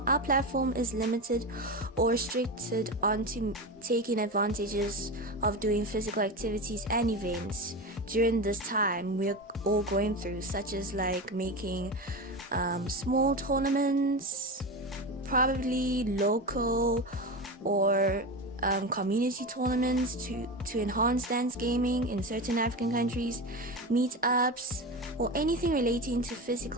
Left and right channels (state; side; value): normal; both; correlation 0.22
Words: our platform is limited or restricted onto taking advantages of doing physical activities and events during this time we're all going through, such as like making small tournaments, probably local or community tournaments to enhance dance gaming in certain African countries, meetups, or anything relating to